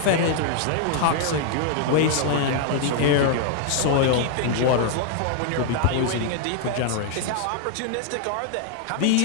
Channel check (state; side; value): different; both; correlation 0.00